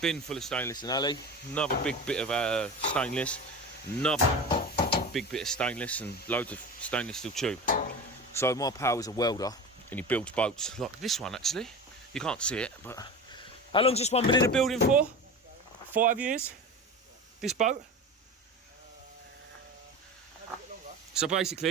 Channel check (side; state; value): both; normal; correlation 0.30